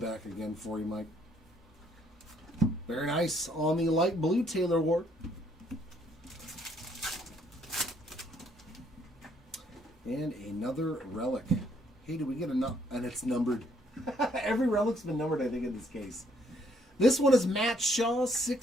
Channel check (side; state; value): both; normal; correlation 0.68